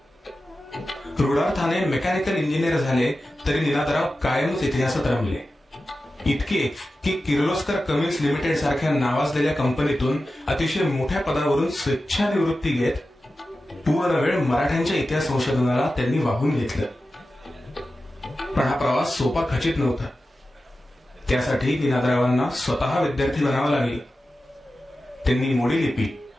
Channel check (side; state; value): both; normal; correlation 0.93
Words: रूढार्थाने मेकॅनिकल इंजिनियर झाले तरी निनादराव कायमच इतिहासात रमले. इतके की किर्लोस्कर कमिन्स लिमिटेड सारख्या नावाजलेल्या कंपनीतून अतिशय मोठ्या पदावरून स्वेच्छानिवृत्ती घेत पूर्ण वेळ मराठ्यांच्या इतिहास संशोधनाला त्यांनी वाहून घेतलं. पण हा प्रवास सोपा खचित नव्हता. त्यासाठी निनादरावांना स्वतः विद्यार्थी बनावं लागले. त्यांनी मोडी लिपी